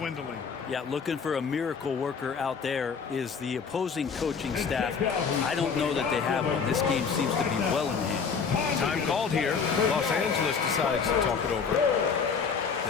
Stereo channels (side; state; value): right; quieter; 5.9 dB